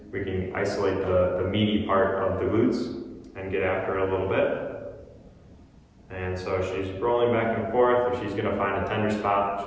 we can isolate the meaty part of the glutes and get after it a little bit. And so she's rolling back and forth. If she's going to find a tender spot,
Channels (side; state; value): both; identical; correlation 1.00